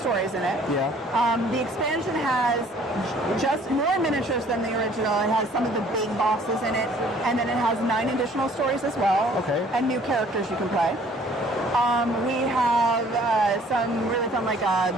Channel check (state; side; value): normal; both; correlation 0.56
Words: in it. Yeah. The expansion has just more miniatures than the original. It has some of the big bosses in it, and then it has 9 additional stories as well. Okay. And new characters you can play. We have some really fun, like